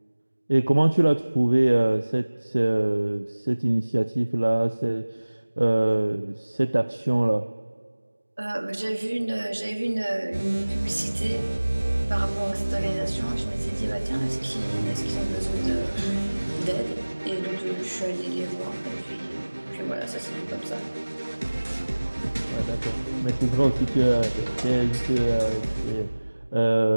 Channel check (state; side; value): inverted; both; correlation -1.00